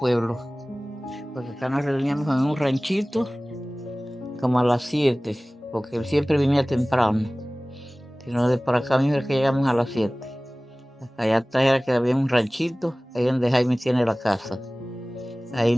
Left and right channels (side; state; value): both; normal; correlation 0.98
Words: Porque acá nos reuníamos en un ranchito, como a las 7, porque él siempre venía temprano. Sino de por acá mismo es que llegamos a las 7. Allá atrás era que había un ranchito, ahí donde Jaime tiene la casa. Ahí